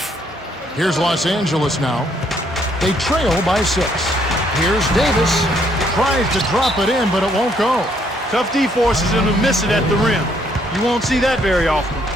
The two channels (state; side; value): normal; both; correlation 0.69